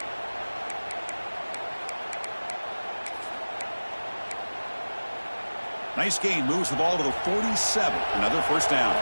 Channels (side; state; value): both; inverted; correlation -1.00